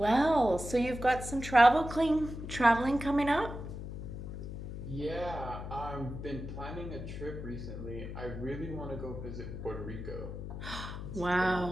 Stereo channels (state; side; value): noise; left; hum, 8 dB below the sound